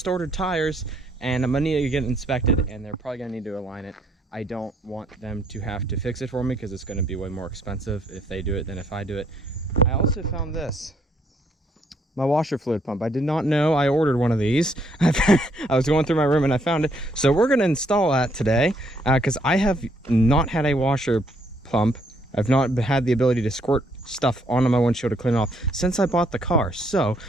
ordered tires and I'm gonna need to get it inspected, and they're probably gonna need to align it. I don't want them to have to fix it for me because it's gonna be way more expensive if they do it than if I do it. I also found this. My washer fluid pump. I did not know I ordered one of these. I was going through my room and I found it. So we're going to install that today because I have not had a washer pump. I've not had the ability to squirt stuff onto my windshield to clean it off since I bought the car. So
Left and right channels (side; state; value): both; normal; correlation 0.69